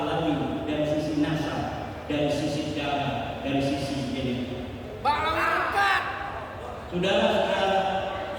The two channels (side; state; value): both; identical; correlation 1.00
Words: dari sisi nasab, dari sisi darah, dari sisi genetik. Bahlawi angkat. Saudara-saudara,